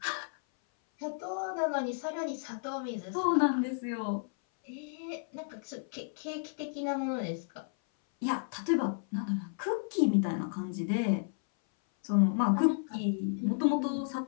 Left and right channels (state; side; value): silent; right; 56 dB below the other